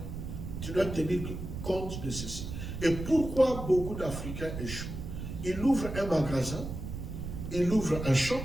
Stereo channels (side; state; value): right; noise; rumble, 7 dB below the sound